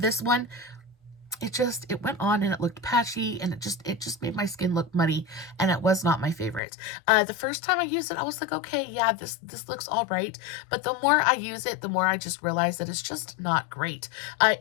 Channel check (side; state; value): right; drops out; at 6.6 s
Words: one. It went on and it looked patchy, and it just made my skin look muddy, and it was not my favorite. The first time I used it, I was like, okay, yeah, this looks all right. But the more I use it, the more I just realize that it's just not great.